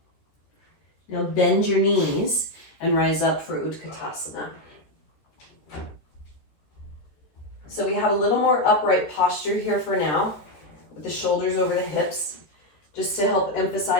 Now bend your knees and rise up for Utkatasana. So we have a little more upright posture here for now, with the shoulders over the hips, just to help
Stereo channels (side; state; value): right; late; 13 ms